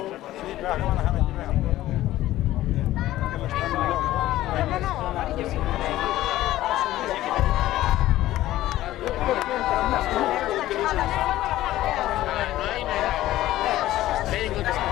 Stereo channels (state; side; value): quieter; right; 15.0 dB